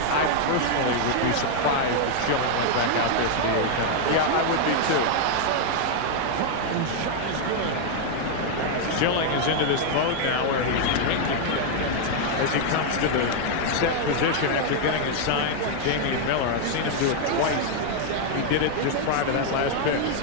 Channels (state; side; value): different; both; correlation 0.00